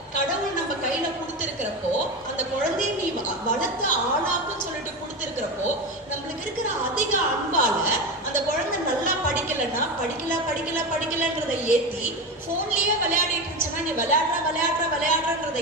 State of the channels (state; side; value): normal; both; correlation 0.20